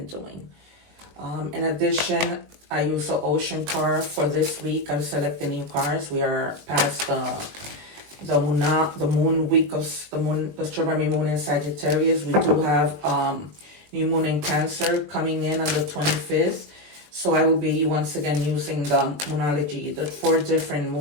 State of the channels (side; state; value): left; late; 20 ms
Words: doing. In addition, I use the Ocean card for this week. I'm selecting new cards. We are past the moon week of the strawberry moon in Sagittarius. We do have new moon in Cancer coming in on the 25th. So I will be once again using the Moonology, the 4 different